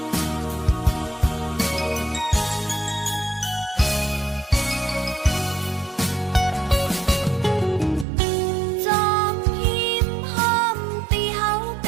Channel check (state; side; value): drops out; left; at 8.1 s